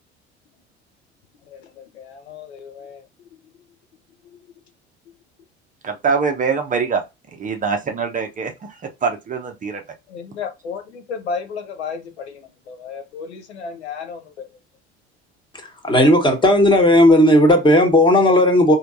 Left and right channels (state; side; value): normal; both; correlation 0.44